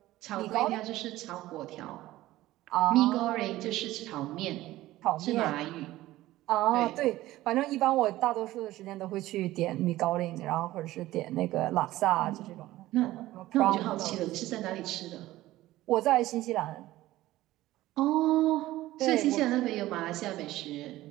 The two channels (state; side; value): quieter; left; 16.2 dB